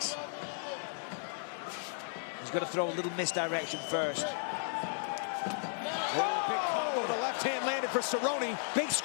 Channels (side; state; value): right; silent; digital silence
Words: He's got to throw a little misdirection first. Oh, big combo. The left hand landed for Cerrone. Big